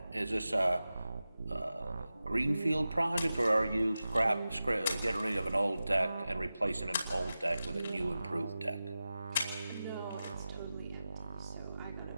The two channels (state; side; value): inverted; both; correlation -0.94